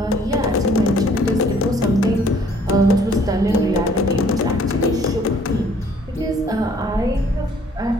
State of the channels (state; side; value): normal; both; correlation 0.59